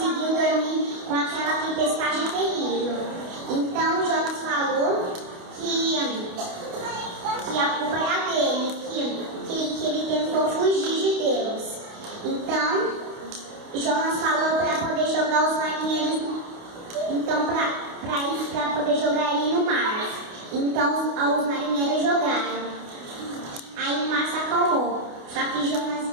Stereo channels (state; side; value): late; left; 28 ms